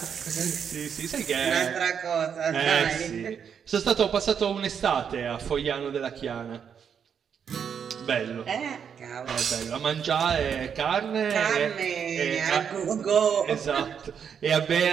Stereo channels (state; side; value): quieter; left; 7.5 dB